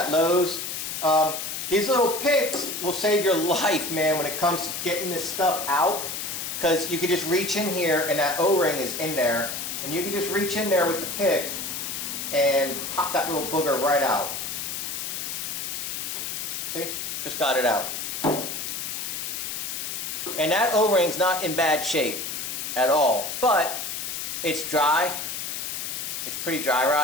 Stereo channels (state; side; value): noise; left; hiss, 4 dB below the sound